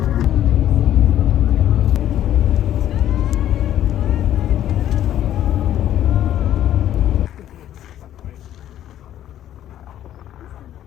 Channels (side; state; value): right; quieter; 11.7 dB